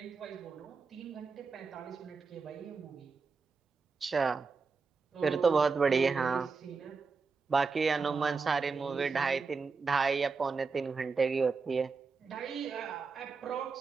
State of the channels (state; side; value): quieter; left; 4.7 dB